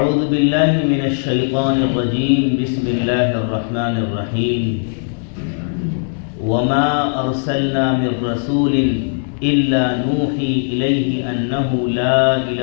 بالله من الشيطان الرجيم بسم الله الرحمن الرحيم وما أرسلنا من رسول إلا نوحي إليه أنه لا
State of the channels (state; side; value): silent; right; digital silence